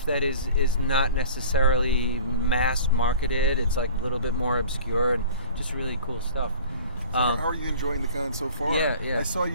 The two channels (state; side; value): inverted; both; correlation -0.42